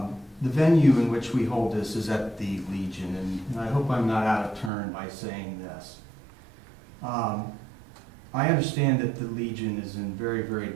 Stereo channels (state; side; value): drops out; left; at 4.7 s